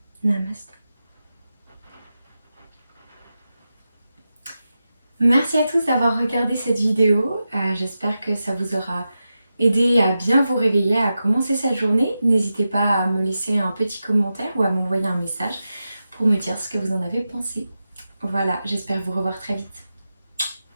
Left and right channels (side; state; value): both; inverted; correlation -0.91